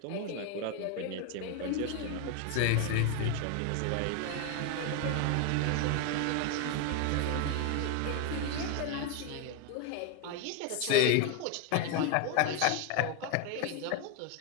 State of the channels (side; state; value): both; different; correlation 0.01